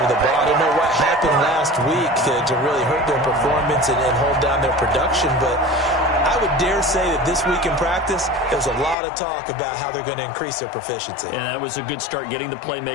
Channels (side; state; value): right; drops out; at 9.0 s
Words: the ball. I don't know what happened last week to really hurt their performance and hold down their production, but I would dare say that this week in practice, there's a lot of talk about how they're going to increase their proficiency. And that was a good start getting the